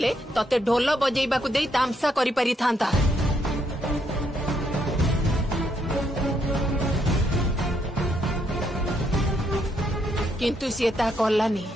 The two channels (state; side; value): normal; both; correlation 0.75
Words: तते ढोल बजेइबा को देई तामसा करि पारि थांता किंतु सी ता कलानी।